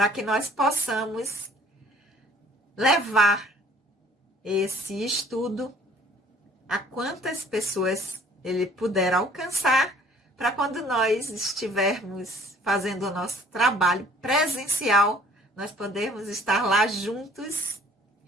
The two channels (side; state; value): both; normal; correlation 0.56